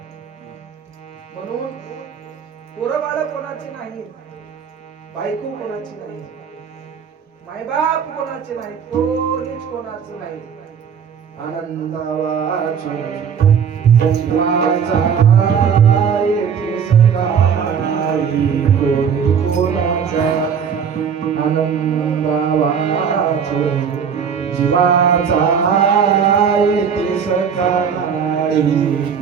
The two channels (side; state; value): left; quieter; 7.1 dB